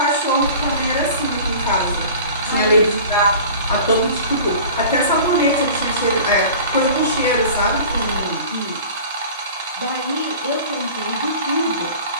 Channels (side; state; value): both; inverted; correlation -0.41